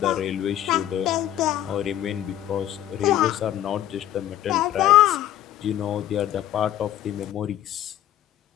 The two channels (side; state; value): right; quieter; 12.3 dB